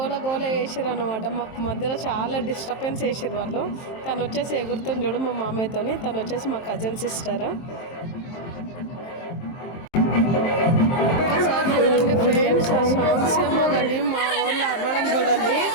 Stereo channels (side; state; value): right; late; 23 ms